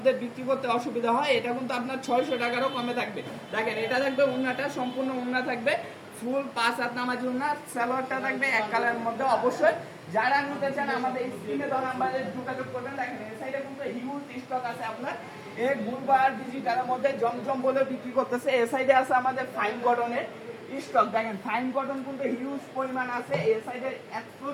বিক্রি করতে অসুবিধা হয়। এটা কিন্তু আপনার 600 টাকারও কমে থাকবে। দেখেন এটা থাকবে উন্নাটা, সম্পূর্ণ উন্না থাকবে, ফুল 5 হাত নামাজি উন্না, সালোয়ারটা থাকবে এক কালারের মধ্যে। অবশ্যই যারা নিতে চান আমাদের স্ক্রিনে দেওয়া নাম্বারে যোগাযোগ করবেন। দেখেন এই সাইডে কিন্তু হিউজ স্টক আছে আপনার এই গুলবার ডিজিটালের মধ্যে জমজম বলে বিক্রি করতেছে। এই সাইডে আছে আমাদের ফাইন কটনের স্টক। দেখেন ফাইন কটন কিন্তু হিউজ পরিমাণ আছে। এই সাইডে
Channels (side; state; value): both; identical; correlation 1.00